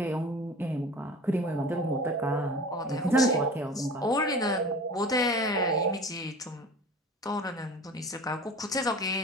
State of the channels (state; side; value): normal; both; correlation 0.39